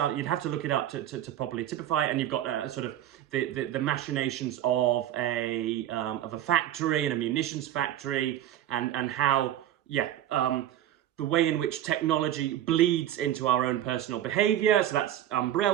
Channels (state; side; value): quieter; left; 12.0 dB